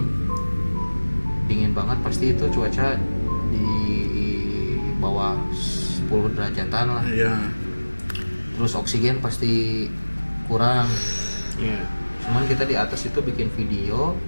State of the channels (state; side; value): inverted; both; correlation -1.00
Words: dingin banget pasti itu cuaca di bawah 10 derajatan lah, Iya. terus oksigen pasti kurang. Iya. Cuman kita di atas itu bikin video